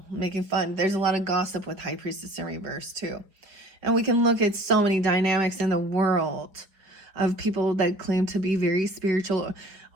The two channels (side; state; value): left; late; 4.9 ms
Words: making fun. There's a lot of gossip with High Priestess in reverse too. And we can look at so many dynamics in the world of people that claim to be very spiritual,